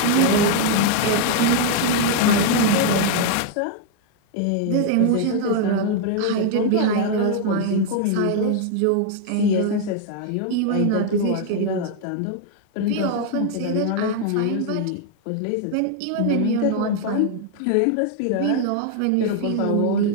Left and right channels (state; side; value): different; both; correlation 0.00